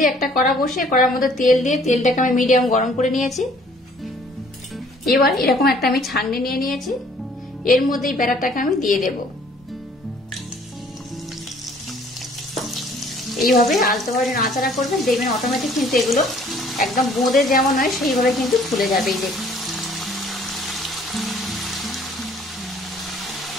একটা কড়া বসিয়ে কড়ার মধ্যে তেল দিয়ে তেলটাকে আমি মিডিয়াম গরম করে নিয়েছি। এবার এরকম একটা আমি ছাঁকনি নিয়ে নিয়েছি, এর মধ্যে এই ব্যাটারটাকে আমি দিয়ে দেব। এইভাবে আলতোভাবে নাড়াচাড়া করবেন, দেখবেন অটোমেটিক কিন্তু এগুলো একদম বোঁদে যেমন হয় সেইভাবে কিন্তু ফুলে যাবে। এই দেখুন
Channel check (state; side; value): normal; both; correlation 0.58